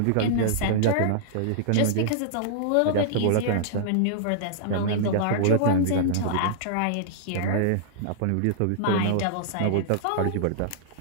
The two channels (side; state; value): both; different; correlation -0.02